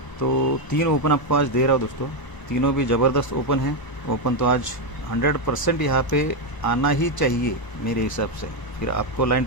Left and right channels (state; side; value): late; right; 1.0 ms